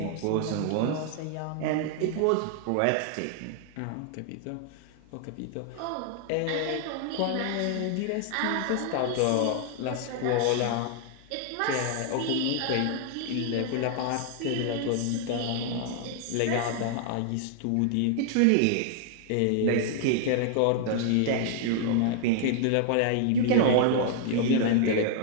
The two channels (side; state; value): both; different; correlation 0.00